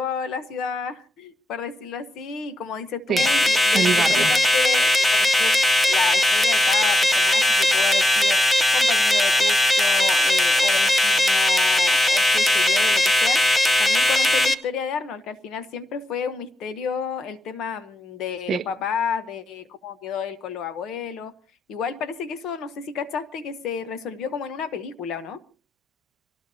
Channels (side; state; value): both; normal; correlation 0.84